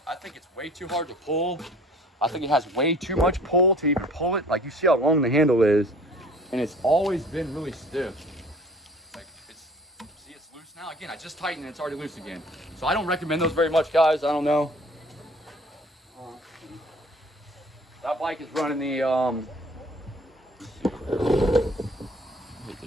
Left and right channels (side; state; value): both; normal; correlation 0.51